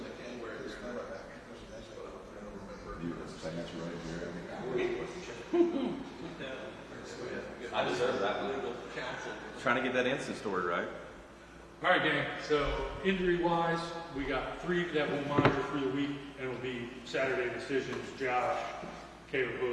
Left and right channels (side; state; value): both; identical; correlation 1.00